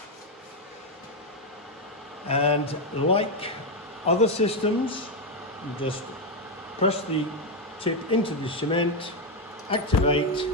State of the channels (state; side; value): normal; both; correlation 0.05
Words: and like other systems, you just press the tip into the cement, activate,